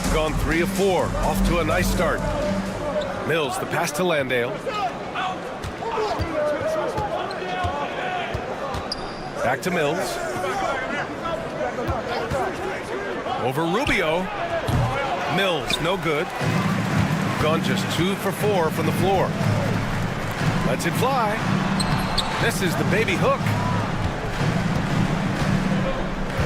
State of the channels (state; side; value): identical; both; correlation 1.00